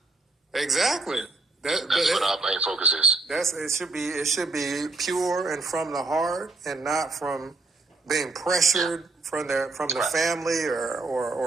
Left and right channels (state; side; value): quieter; left; 3.4 dB